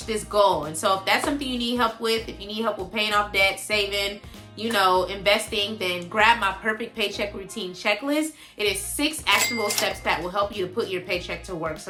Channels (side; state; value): both; identical; correlation 1.00